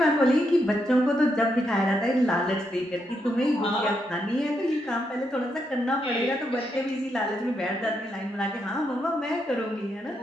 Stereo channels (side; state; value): both; normal; correlation 0.80